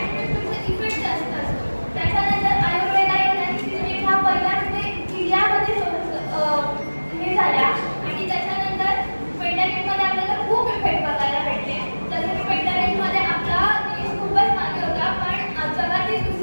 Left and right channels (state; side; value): inverted; both; correlation -1.00